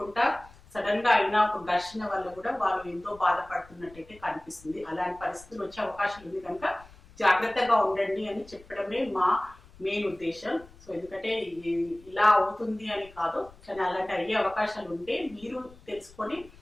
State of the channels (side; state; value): left; noise; rumble, 23 dB below the sound